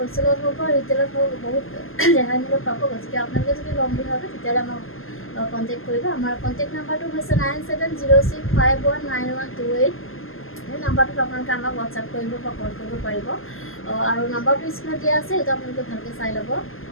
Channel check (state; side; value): late; right; 0.60 ms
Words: হওক বা ৰিটেইলত হওক বহুত ৰেহাই মূল্যত পাব। গতিকে আপোনালোকে যদি ল'ম বুলি ভাবে তেতিয়াহ'লে আমাক কণ্টেক্ট কৰিব। আমাৰ কণ্টেক্ট নাম্বাৰটো হৈছে 9706519128। সেই নাম্বাৰটোত আপোনালোকে আমাক হোৱাটছআপ কৰিব বা কল কৰিব পাৰিব। আৰু নাম্বাৰটো স্ক্ৰীণত দিয়া আছে, সেইটো আপোনালোকে ভালকৈ চাই ল'ব।